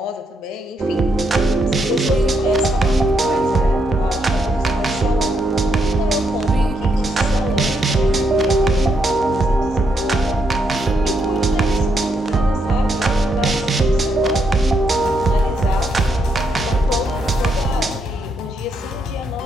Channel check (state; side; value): normal; both; correlation 0.78